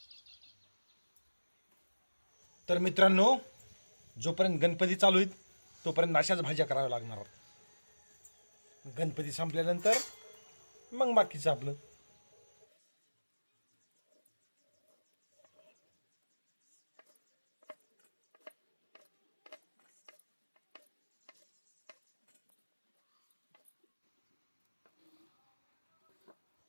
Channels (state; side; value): inverted; both; correlation -1.00